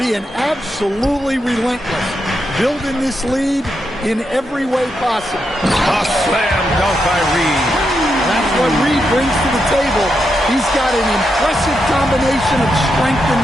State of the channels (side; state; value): both; normal; correlation 0.84